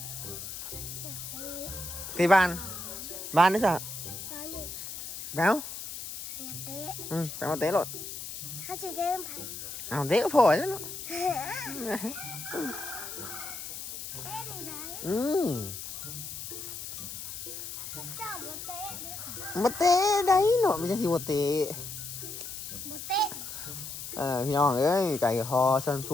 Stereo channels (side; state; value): left; noise; hiss, 8 dB below the sound